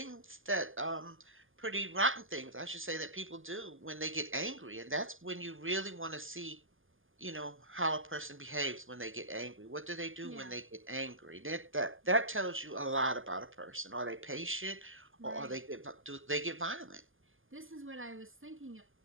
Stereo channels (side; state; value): left; late; 0.59 ms